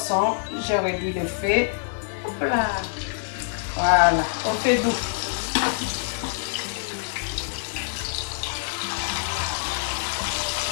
J'ai réduit le feu. Hop là. Voilà, au feu doux.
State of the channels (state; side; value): silent; right; digital silence